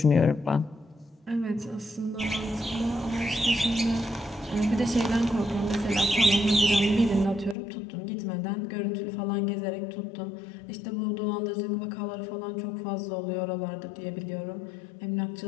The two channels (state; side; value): drops out; right; at 7.6 s